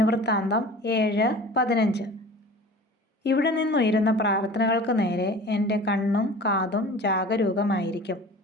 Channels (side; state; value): both; normal; correlation 0.40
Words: 7:15 ഇവിടെ നിന്നുയരുന്ന പ്രാർത്ഥനകൾക്ക് നേരെ എൻ്റെ കണ്ണും കാതും ജാഗരൂകമായിരിക്കും.